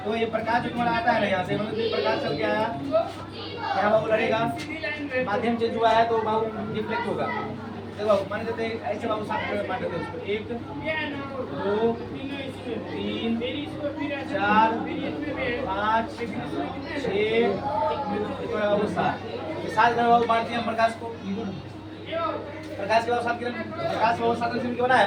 तो ये प्रकाश जो तुम्हारा आता है ना यहाँ से, मतलब ये प्रकाश चल के आया यहाँ बाबू लड़ेगा, माध्यम चेंज हुआ है तो बाबू रिफ्लेक्ट होगा। देखो बाबू मान लेते हैं ऐसे बाबू 7 मान लेते हैं उसको, 1 2 3 4 5 6 बाबू 7 बाबू बांटते हैं प्रकाश को। प्रकाश के बाद 7 किरण, प्रकाश बाबू 7 किरण के बना है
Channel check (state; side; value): identical; both; correlation 1.00